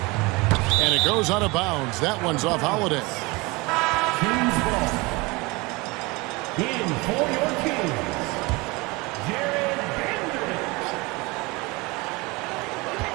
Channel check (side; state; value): left; quieter; 24.7 dB